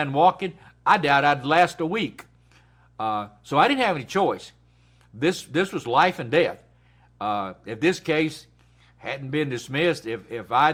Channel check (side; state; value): both; identical; correlation 1.00